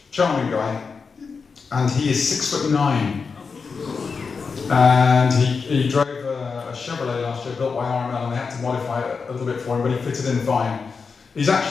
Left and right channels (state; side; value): quieter; right; 5.1 dB